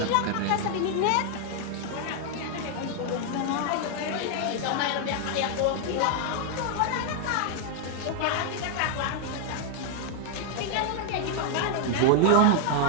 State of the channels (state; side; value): different; both; correlation 0.00